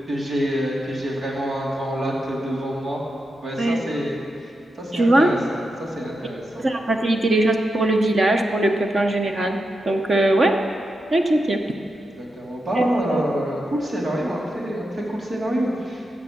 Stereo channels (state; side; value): normal; both; correlation 0.87